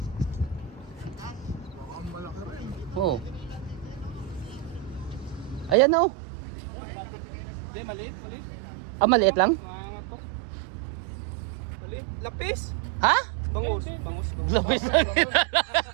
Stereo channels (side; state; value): left; drops out; at 5.8 s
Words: Oo. Ayan na oh. Hindi, maliit. Ah, maliit lang? Maangat to. Maliit. Lapis. Ha? Bangus. Lapis lang.